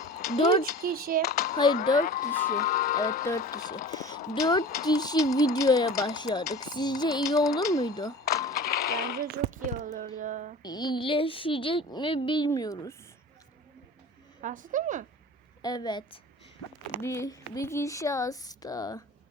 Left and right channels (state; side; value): normal; both; correlation 0.39